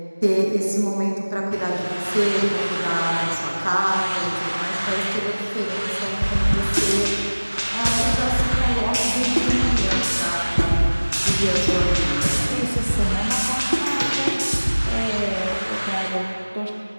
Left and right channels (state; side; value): inverted; both; correlation -1.00